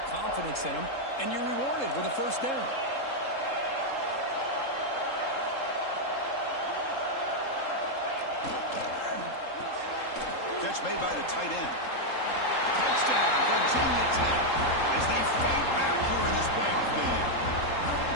confidence in them. And you're rewarded with a first down. Catch made by the tight end. Touchdown, Virginia Tech, as they fight back here in this playoff game.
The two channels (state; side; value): late; right; 3.7 ms